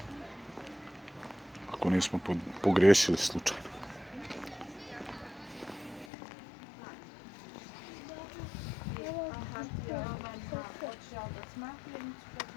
ako nismo pogriješili slučajno.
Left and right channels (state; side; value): drops out; right; at 6.1 s